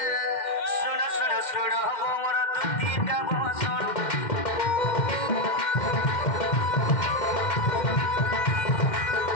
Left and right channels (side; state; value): right; late; 2.1 ms